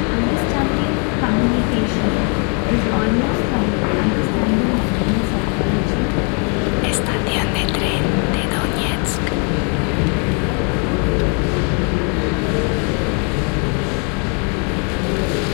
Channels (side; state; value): right; quieter; 37.5 dB